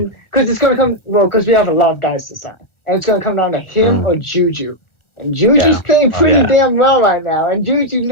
come. Well, because we have a lot of guys to sign, and it's gonna come down to him or Juju. And Juju's playing pretty damn well right now, and Juju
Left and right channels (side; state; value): right; late; 1.4 ms